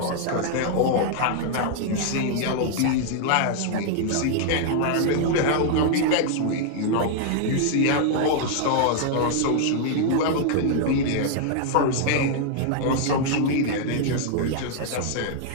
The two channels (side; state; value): both; different; correlation 0.00